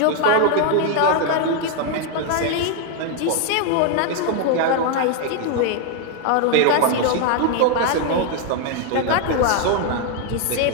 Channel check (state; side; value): different; both; correlation 0.01